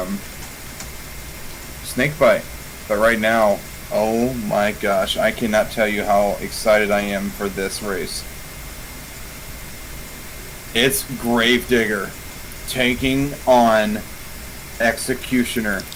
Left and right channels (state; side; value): identical; both; correlation 1.00